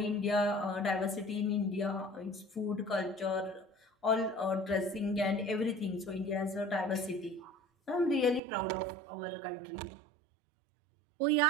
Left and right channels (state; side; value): drops out; left; at 8.4 s